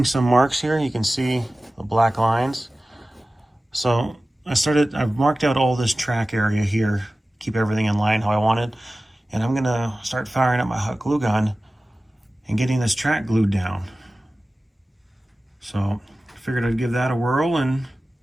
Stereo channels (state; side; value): normal; both; correlation 0.96